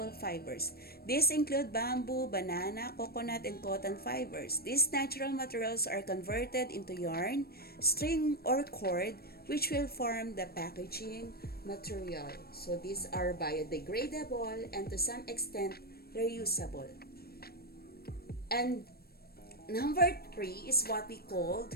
fibers. These include bamboo, banana, coconut, and cotton fibers. These natural materials are converted into yarn, string, or cord, which will form the packaging material. So these are biodegradable and to some extent reusable. And number 3 is what we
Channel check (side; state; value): right; late; 0.45 ms